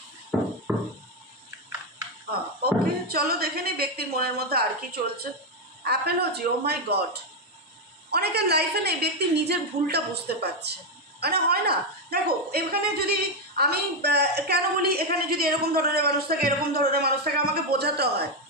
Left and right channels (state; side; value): normal; both; correlation 0.05